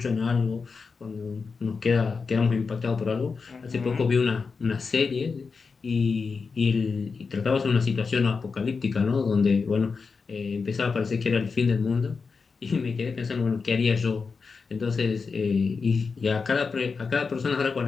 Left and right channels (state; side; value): quieter; right; 4.9 dB